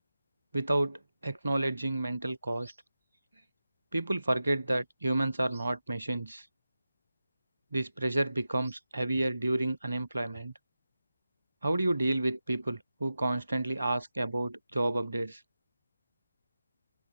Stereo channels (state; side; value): inverted; both; correlation -0.93